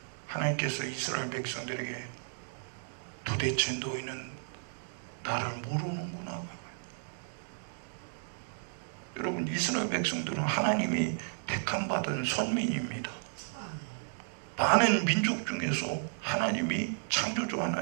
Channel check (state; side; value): silent; left; digital silence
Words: 하나님께서 이스라엘 백성들에게 도대체 너희는 나를 모르는구나. 여러분, 이스라엘 백성들은 하나님이 택함받은 선민입니다. 많은 민족 중에서 하나님이, 창조주